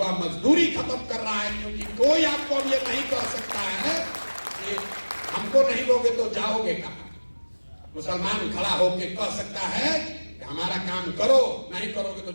मजदूरी खत्म कर रहा है, क्योंकि कोई आपको अब ये नहीं कह सकता है कि हमको नहीं दोगे तो जाओगे कहां। मुसलमान खड़ा होकर कह सकता है कि हमारा काम करो, नहीं करोगे तो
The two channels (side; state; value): both; inverted; correlation -1.00